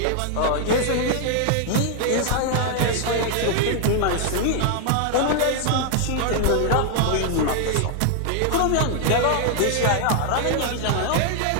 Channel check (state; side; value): different; both; correlation 0.00